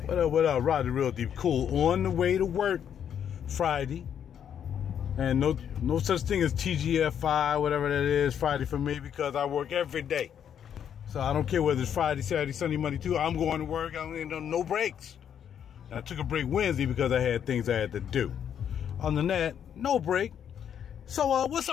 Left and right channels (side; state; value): right; quieter; 8.8 dB